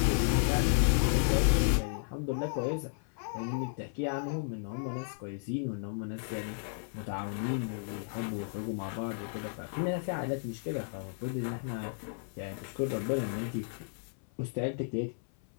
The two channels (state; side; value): silent; right; 56 dB below the other